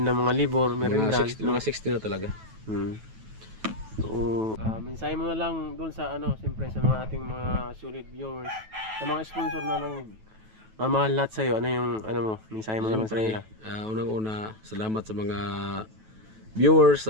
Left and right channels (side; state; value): left; late; 9.2 ms